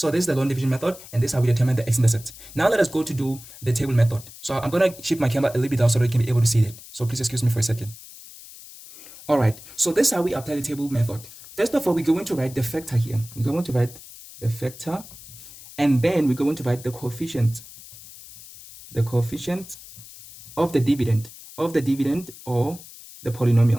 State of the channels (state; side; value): noise; left; hiss, 17 dB below the sound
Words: this is the long division method, and this is how we determine the x-intercept. Now let us go to do the table method. So I'm going to shift my camera a little bit down so that you can be able to see it. So please excuse me for a second. All right, so this is how we apply the table method. First of all, we're going to write the factor here. We're going to write the factor, and then we're going to write the coefficient of the dividend or the